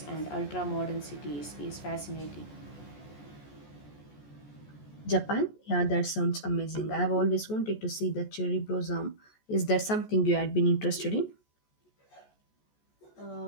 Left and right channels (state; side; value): late; right; 14 ms